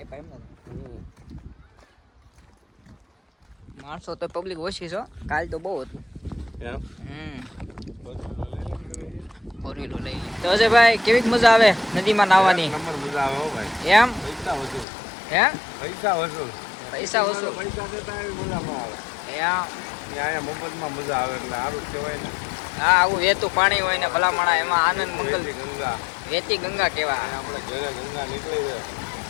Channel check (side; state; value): right; drops out; at 14.9 s